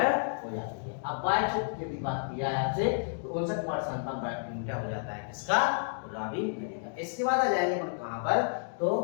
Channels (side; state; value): right; silent; digital silence